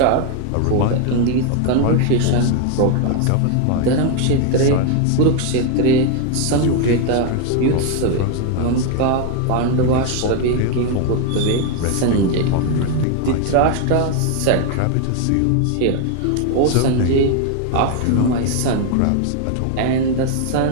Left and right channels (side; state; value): both; different; correlation 0.01